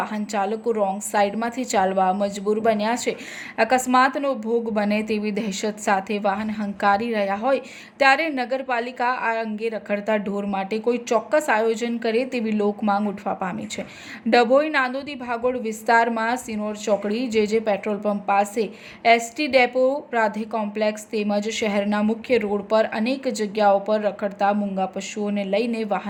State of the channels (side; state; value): both; identical; correlation 1.00